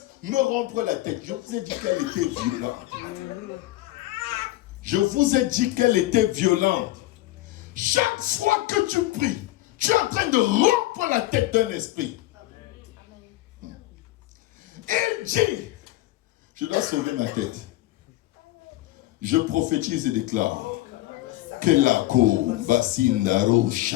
me rompre la tête. Je vous ai dit qu'elle était violente. Je vous ai dit qu'elle était violente. Chaque fois que tu pries, tu es en train de rompre la tête d'un esprit. Il dit, je dois sauver ma tête. Je prophétise et déclare que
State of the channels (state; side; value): quieter; right; 17.0 dB